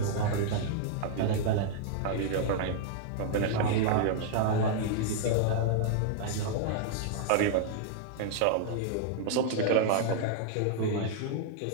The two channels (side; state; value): both; different; correlation -0.01